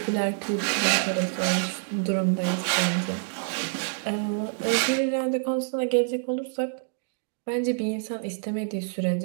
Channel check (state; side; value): silent; left; digital silence